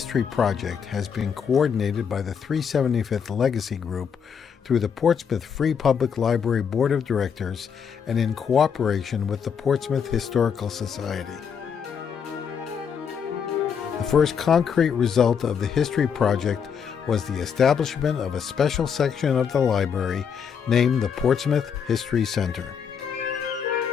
Project has been coordinated by the 375th Legacy Group through the Portsmouth Free Public Library Board of Directors and in cooperation with the Portsmouth Historical Society. The first concrete result of the History Project was the establishment of a special section of the library named the Portsmouth History Center.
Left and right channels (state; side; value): quieter; right; 7.1 dB